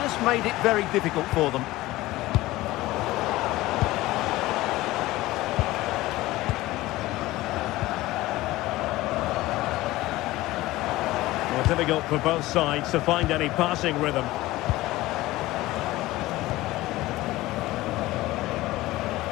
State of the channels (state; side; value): quieter; right; 17.9 dB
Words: made it very difficult for them. Well, difficult for both sides to find any passing rhythm.